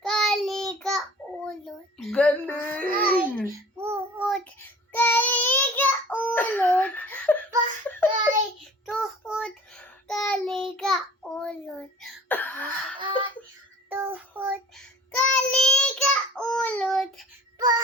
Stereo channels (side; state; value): both; normal; correlation 0.47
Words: kalika, ulod. Galing. Tuhod, kalika, ulod. Bahay, tuhod, kalika, ulod. Bahay, tuhod, kalika, ulod.